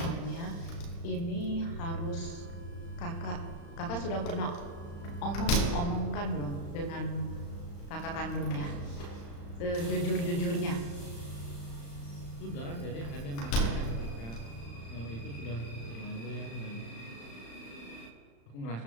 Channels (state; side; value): late; right; 35 ms